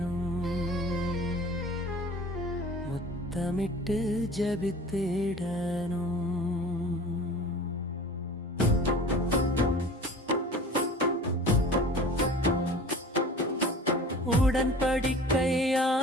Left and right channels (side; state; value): both; normal; correlation 0.41